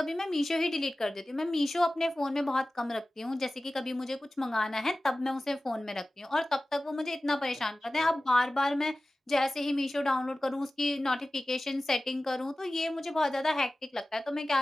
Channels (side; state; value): both; normal; correlation 0.96